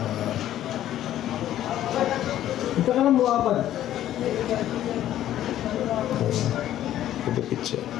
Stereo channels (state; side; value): quieter; right; 12.4 dB